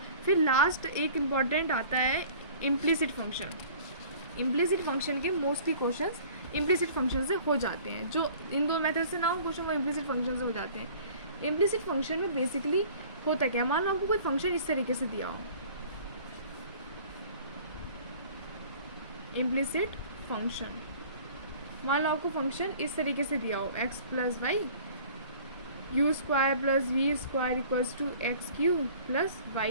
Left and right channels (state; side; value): inverted; both; correlation -0.48